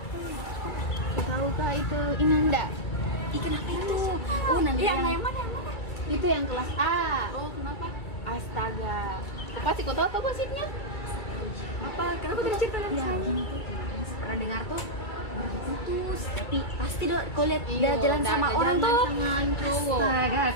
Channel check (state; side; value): late; right; 2.3 ms